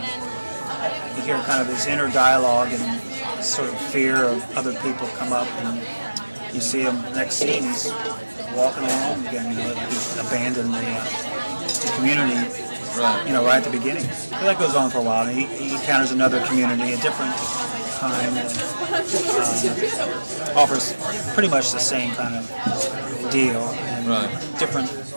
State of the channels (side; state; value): both; inverted; correlation -1.00